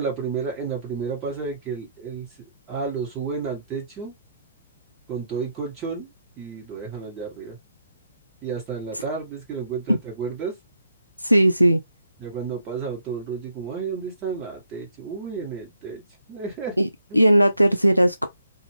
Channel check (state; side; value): inverted; both; correlation -0.76